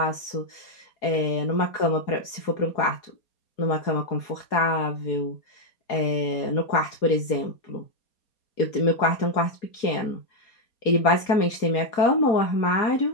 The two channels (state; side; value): late; right; 4.2 ms